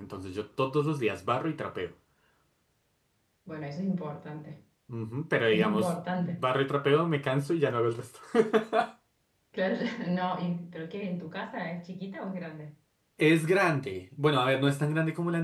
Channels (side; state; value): both; identical; correlation 1.00